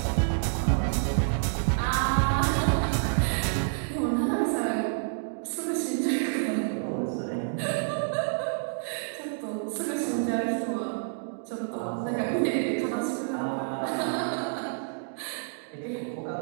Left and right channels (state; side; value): silent; left; digital silence